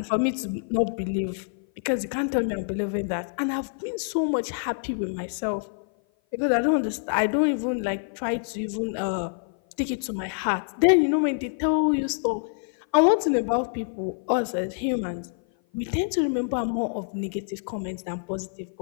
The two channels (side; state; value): right; silent; 56 dB below the other